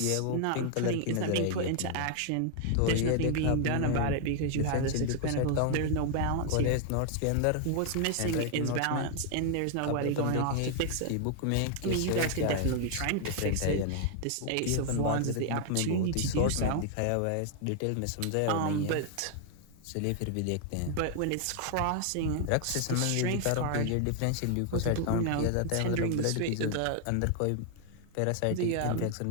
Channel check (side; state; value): both; different; correlation 0.00